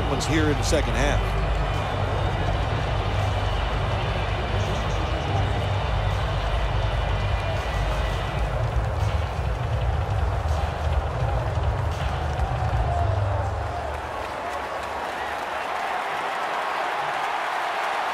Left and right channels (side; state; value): both; identical; correlation 1.00